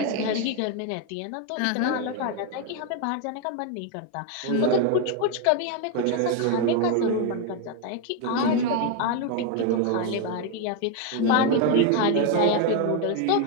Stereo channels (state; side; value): different; both; correlation 0.01